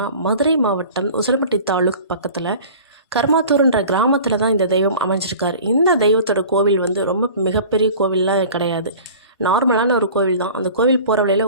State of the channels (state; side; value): inverted; both; correlation -0.42